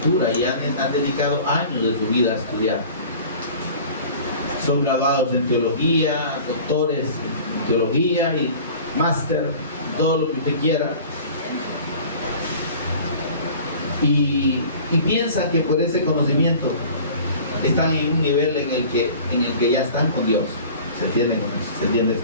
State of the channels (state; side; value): inverted; both; correlation -0.43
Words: y han dedicado años de su vida a estudiar. Son graduados en teología, doctores en teología y máster, todo lo que usted quiera. Y piensan que por ese conocimiento están en un nivel en el que ya están con Dios. ¿Se entiende con eso? ¿Se entiende eso?